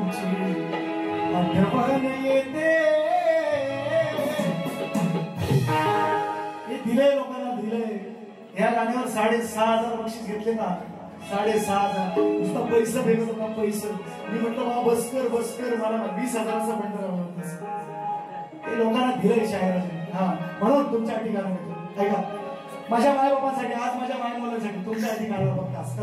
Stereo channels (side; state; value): both; identical; correlation 1.00